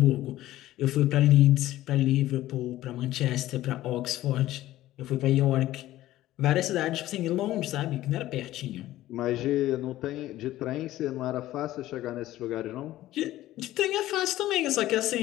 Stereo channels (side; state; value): right; quieter; 15.1 dB